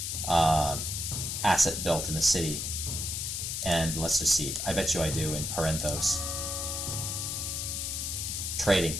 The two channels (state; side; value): noise; left; hiss, 2 dB below the sound